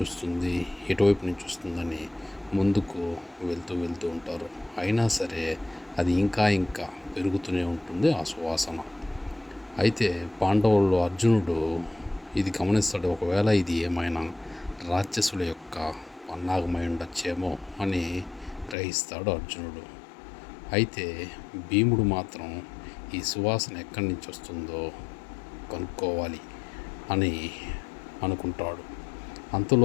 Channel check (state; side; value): drops out; right; at 18.8 s